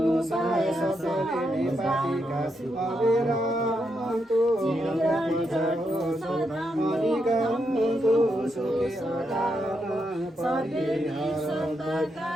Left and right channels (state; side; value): normal; both; correlation 0.82